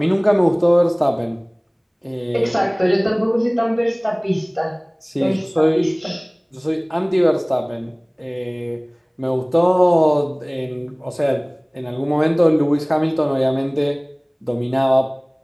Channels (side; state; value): both; identical; correlation 1.00